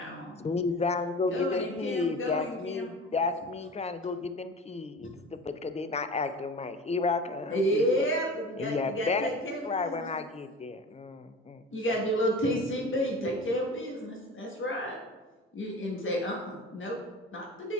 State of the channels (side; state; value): both; normal; correlation 0.36